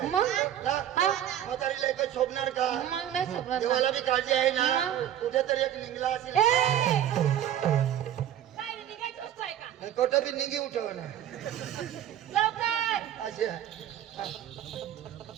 आहे मग ना? हा. म्हातारीला एकच शोभणार का? मग नाही सोडणार ना. देवाला बी काळजी आहे ना. मग. कुठेतरी एक निघला असेल. ए! काय रे, निघायची वस्तू आहे का? कोठं बी निघी उठव ना लवकर. असे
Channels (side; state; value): left; quieter; 11.0 dB